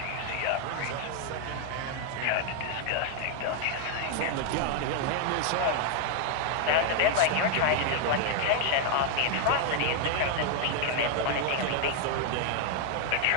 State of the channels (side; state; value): both; different; correlation 0.00